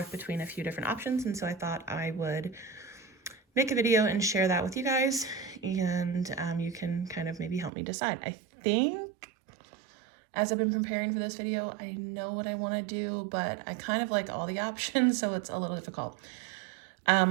between a few different options, and so I thought I would make a video and share that with you guys, and you can kind of maybe help me decide. I think as I've been preparing for this video, I know what I want to do, but I kind of like all the options, so it's a little difficult.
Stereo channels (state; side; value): drops out; left; at 7.7 s